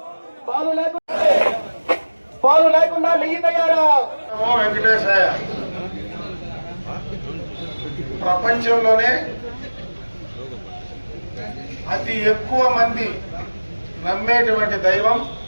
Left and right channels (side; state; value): both; inverted; correlation -1.00